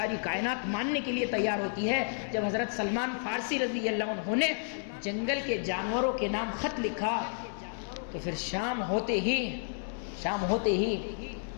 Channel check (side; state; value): right; silent; digital silence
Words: کائنات ماننے کے لیے تیار ہوتی ہے۔ جب حضرت سلمان فارسی رضی اللہ عنہ نے جنگل کے جانوروں کے نام خط لکھا، تو پھر شام ہوتے ہی